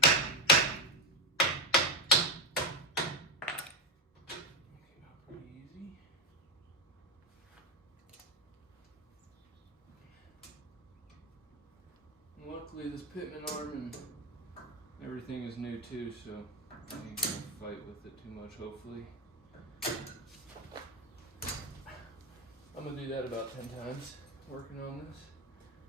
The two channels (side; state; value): both; normal; correlation 0.10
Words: Pretty easy. And luckily this pitman arm and everything is new too, so I ain't gonna fight with it too much, hopefully. I'm gonna do that about 10 times, working on this.